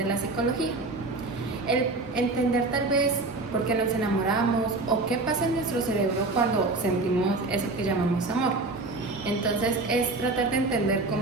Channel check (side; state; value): left; quieter; 3.2 dB